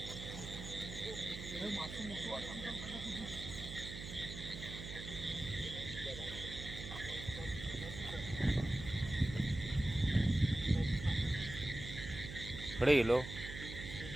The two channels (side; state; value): right; noise; hum, 9 dB below the sound